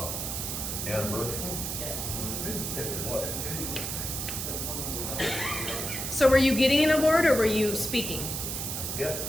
anniversary? What? So were you getting an award or were you speaking? I guess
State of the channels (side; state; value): right; noise; hiss, 3 dB below the sound